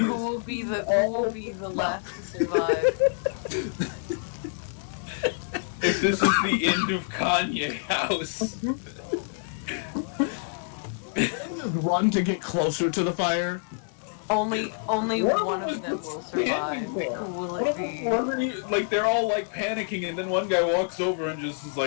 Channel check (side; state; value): right; silent; digital silence